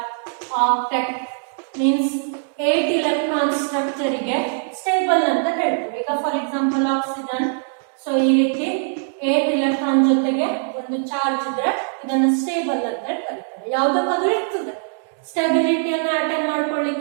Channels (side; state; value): left; silent; digital silence